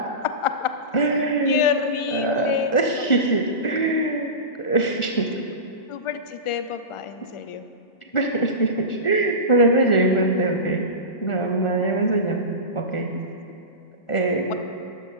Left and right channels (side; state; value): right; late; 1.4 ms